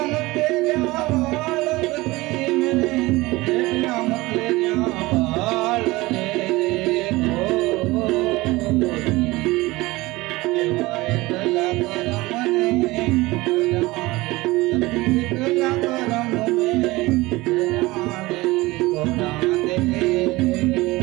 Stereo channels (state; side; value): quieter; left; 20.7 dB